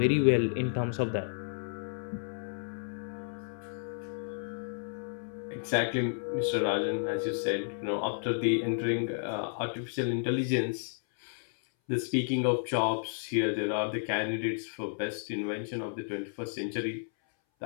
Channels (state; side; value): silent; right; 56 dB below the other